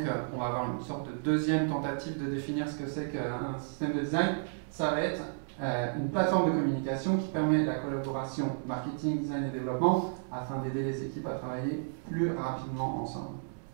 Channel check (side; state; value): left; silent; 56 dB below the other